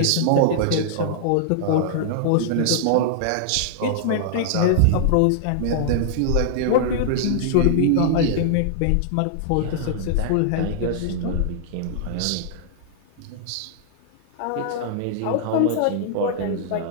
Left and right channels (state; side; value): different; both; correlation -0.01